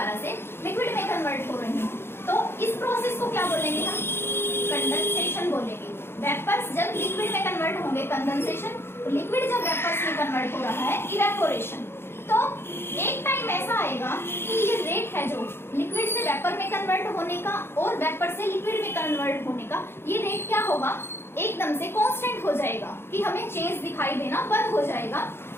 से लिक्विड में कन्वर्ट हो रहे हैं। तो इस प्रोसेस को क्या बोलेंगे हम, कंडेंसेशन बोलेंगे। वेपर्स जब लिक्विड में कन्वर्ट होंगे कंडेंसेशन, लिक्विड जब वेपर्स में कन्वर्ट हो रहा है इवेपोरेशन। तो एक टाइम ऐसा आएगा कि ये रेट है जो लिक्विड से वेपर में कन्वर्ट होने का और वेपर से लिक्विड में कन्वर्ट होने का, ये रेट क्या होगा, एकदम से कांस्टेंट हो जाएगा, कि हमें चेंज दिखाई देना बंद हो जाएगा।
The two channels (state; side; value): late; right; 0.11 ms